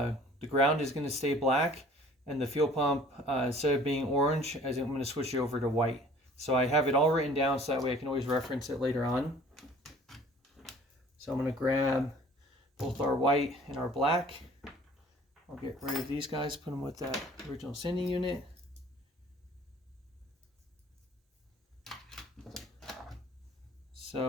ground is going to stay black, and the fuel pump, instead of being orange, I'm going to switch it over to white. So I have it all written down so that way I can always reference it later on. So I'm going to grab both our white and our black. I'll get rid of these guys, put them with that original sending unit.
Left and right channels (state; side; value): normal; both; correlation 0.51